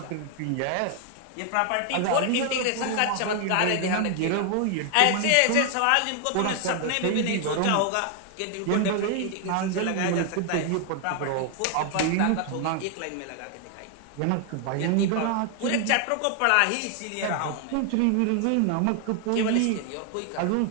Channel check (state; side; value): different; both; correlation 0.00